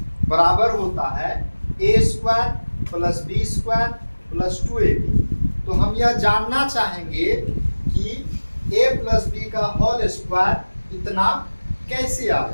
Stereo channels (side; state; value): both; inverted; correlation -1.00